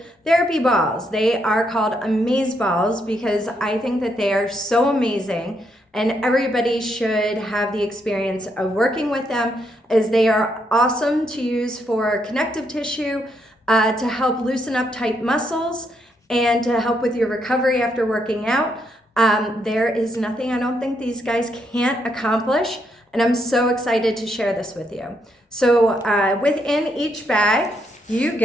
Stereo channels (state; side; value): normal; both; correlation 0.77